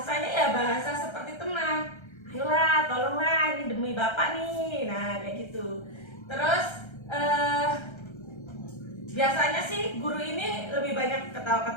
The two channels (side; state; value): right; late; 1.3 ms